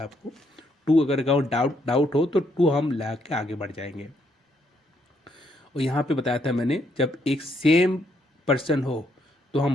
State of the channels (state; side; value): normal; both; correlation 0.73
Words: आपको 2 अगर डाउट हो तो 2 हम ला के आगे बढ़ जाएंगे। और यहाँ पे बताया था मैंने जब एक सेम पर्सन हो तो